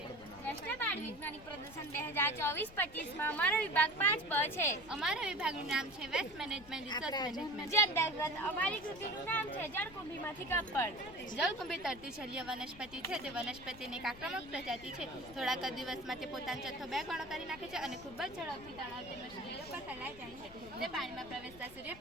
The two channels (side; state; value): left; noise; rumble, 19 dB below the sound